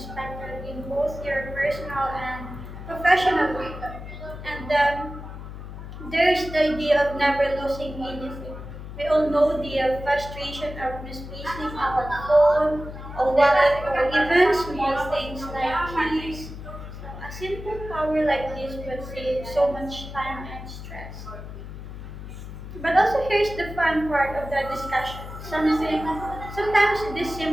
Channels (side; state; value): left; noise; hum, 11 dB below the sound